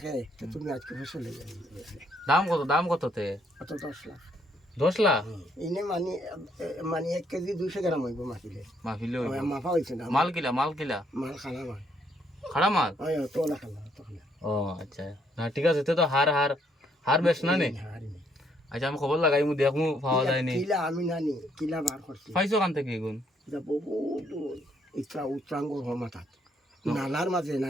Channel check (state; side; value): normal; both; correlation 0.70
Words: তো তুমি আজকে ফসল হয়ে যাবে। দাম কত তে অত 10 লাখ 10 লাখ ইনে মানে 1 কেজি 200 গ্রাম হইব মাফিলে মাফা হইছে না মাল কিলা মাল খানা ভাই খাড়া মাল ওই তো না খানা তো খানা ও আচ্ছা না ঠিক আছে তো হার বেশ না নে আচ্ছা আমি খবর লাগাই মু দেখমু পাওয়া যায় নি কিলা আমি নানি কিলা বার করছি পাইছো কান থেকে গুণ এটা বহুত উচ্চাঙ্গর হমাতাত নালার মাঝে